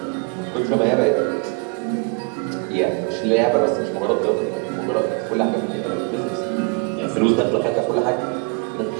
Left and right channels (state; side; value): quieter; left; 34.5 dB